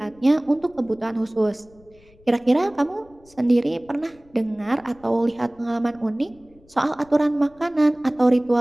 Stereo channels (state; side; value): noise; left; rumble, 28 dB below the sound